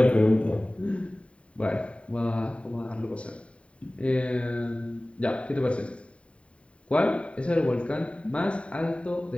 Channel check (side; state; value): right; late; 0.061 ms